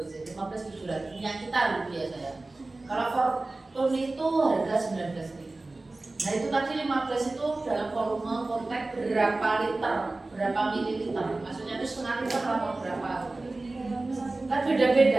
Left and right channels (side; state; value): left; quieter; 3.1 dB